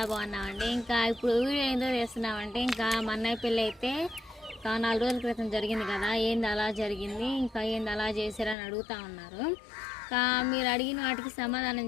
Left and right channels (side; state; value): right; drops out; at 8.6 s